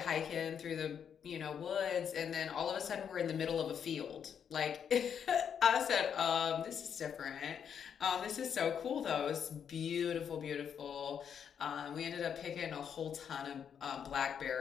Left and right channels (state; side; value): quieter; right; 7.9 dB